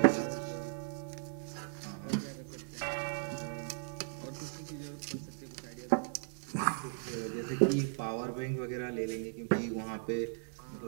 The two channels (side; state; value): left; silent; 53 dB below the other